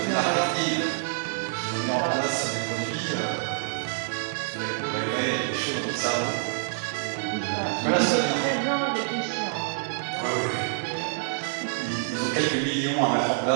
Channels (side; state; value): left; silent; digital silence